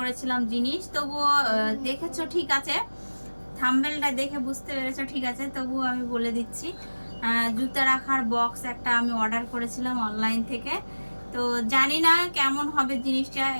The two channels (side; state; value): both; inverted; correlation -1.00